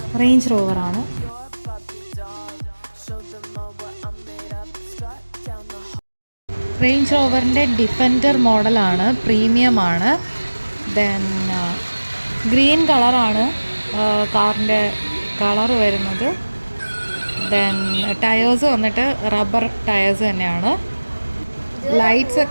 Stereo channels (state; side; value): inverted; both; correlation -1.00